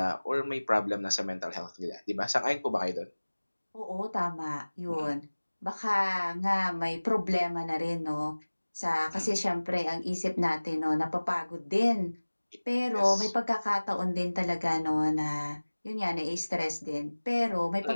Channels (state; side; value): inverted; both; correlation -1.00